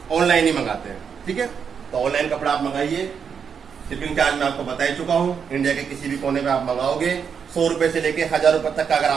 ऑनलाइन ही मंगाते हैं, ठीक है। तो ऑनलाइन कपड़ा आप मंगाइए, शिपिंग चार्ज मैं आपको बता ही चुका हूँ। इंडिया के किसी भी कोने में आप मंगाओगे 100 रुपए से लेके 1000 रुपए तक का अगर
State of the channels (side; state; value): left; quieter; 6.8 dB